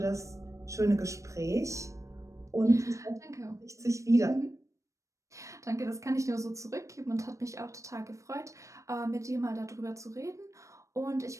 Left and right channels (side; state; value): left; late; 0.15 ms